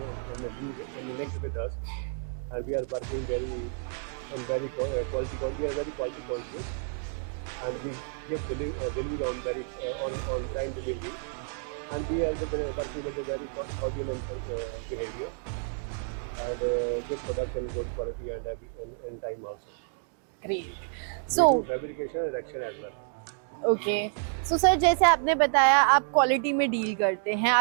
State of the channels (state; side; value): silent; left; 58 dB below the other